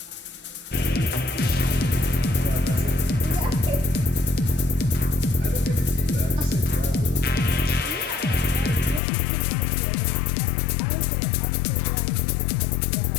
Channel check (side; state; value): right; drops out; at 9.0 s